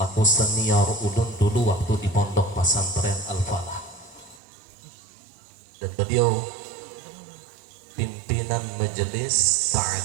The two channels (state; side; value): drops out; left; at 4.4 s